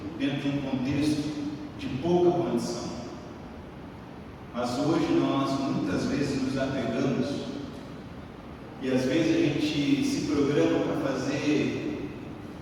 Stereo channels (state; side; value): identical; both; correlation 1.00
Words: dentro de um contexto de pouca condição, mas hoje nós muitas vezes nos apegamos e às vezes a gente se programa para fazer